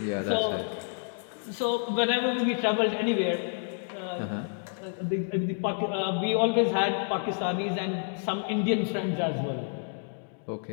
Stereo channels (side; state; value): right; silent; digital silence